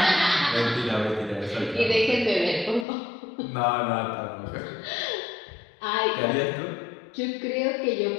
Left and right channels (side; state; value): right; drops out; at 2.9 s